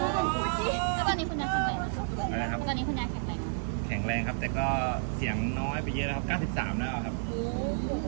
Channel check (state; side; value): silent; left; 57 dB below the other